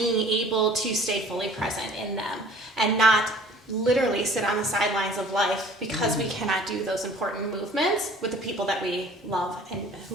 able to stay fully present in them and not literally sit on the sidelines of life because we cannot do those important movements with the people that we love and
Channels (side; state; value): both; normal; correlation 0.50